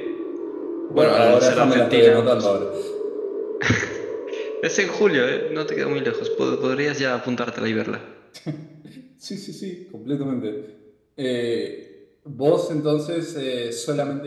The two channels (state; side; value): identical; both; correlation 1.00